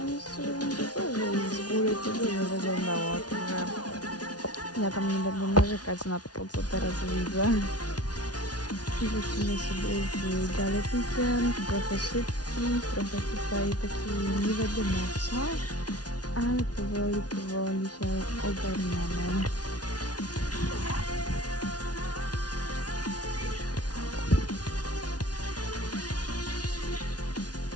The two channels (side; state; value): right; late; 0.69 ms